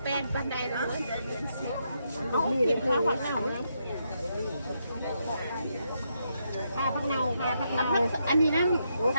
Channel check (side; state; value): both; inverted; correlation -0.80